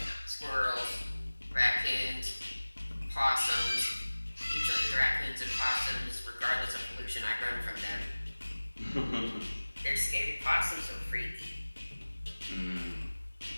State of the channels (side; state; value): both; inverted; correlation -1.00